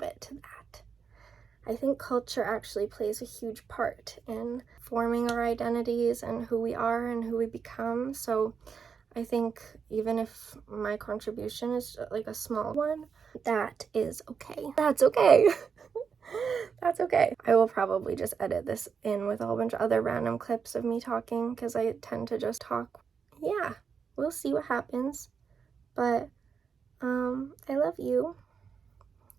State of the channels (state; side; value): quieter; left; 6.3 dB